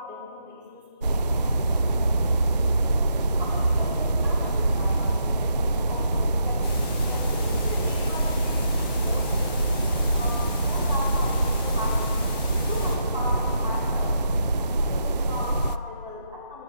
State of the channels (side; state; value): both; inverted; correlation -0.79